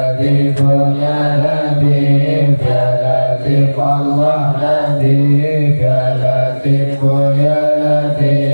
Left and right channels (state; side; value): inverted; both; correlation -1.00